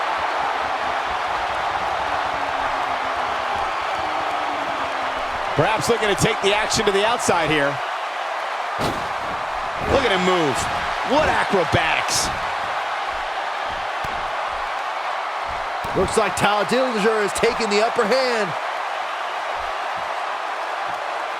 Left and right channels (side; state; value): both; identical; correlation 1.00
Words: Perhaps looking to take the action to the outside here. Look at him move. What acrobatics. Looks like Tyler Dillinger is taking the upper hand.